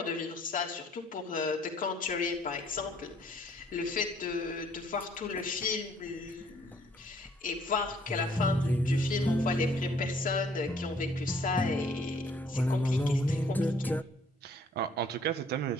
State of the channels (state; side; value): normal; both; correlation 0.61